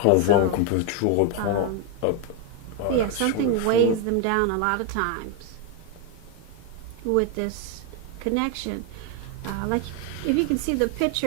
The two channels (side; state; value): both; different; correlation 0.01